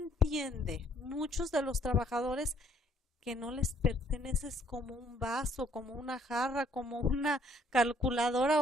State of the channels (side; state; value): both; normal; correlation 0.64